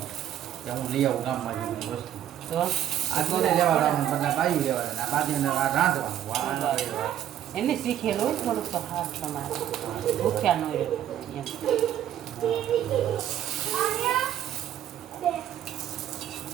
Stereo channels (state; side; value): quieter; left; 11.0 dB